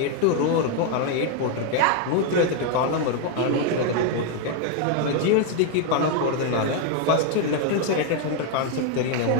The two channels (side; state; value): both; different; correlation 0.01